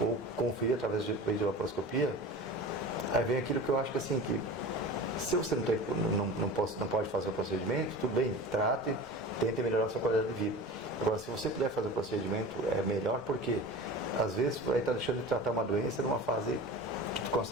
conferir através de videolaparoscopia, aí vem aquilo que eu acho que assim, que se você não pode fazer o procedimento, tudo bem, trate, tente melhorar a sua qualidade de vida. Agora, se você puder fazer o procedimento, é melhor porque, às vezes, vai estar deixando de tratar uma doença numa fase que tu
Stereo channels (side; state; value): both; normal; correlation 0.34